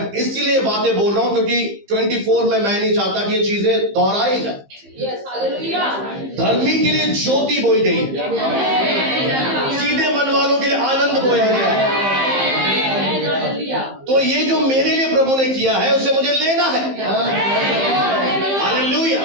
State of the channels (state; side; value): late; left; 15 ms